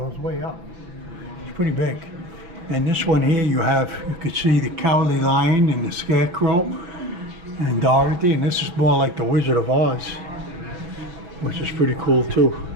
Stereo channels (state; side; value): late; left; 5.9 ms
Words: way up. It's pretty big. And this one here, you could see the Cowardly Lion and the Scarecrow and Dorothy, and this is more like the Wizard of Oz, which is pretty cool too.